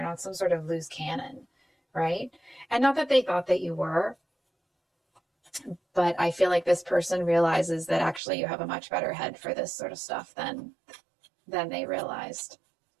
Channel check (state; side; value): drops out; left; at 8.2 s